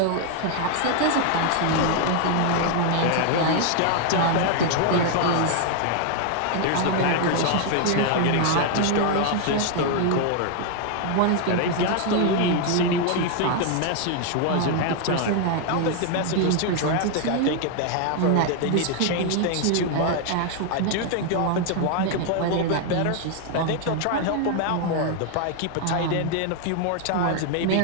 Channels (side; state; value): both; different; correlation 0.00